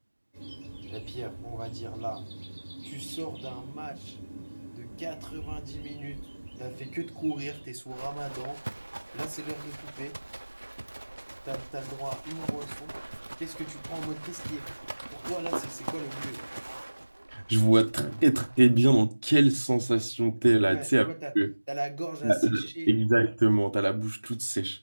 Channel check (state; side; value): inverted; both; correlation -1.00